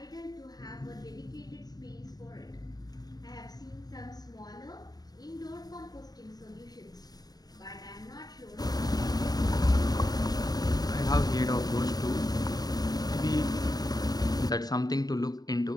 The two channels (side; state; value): right; late; 0.19 ms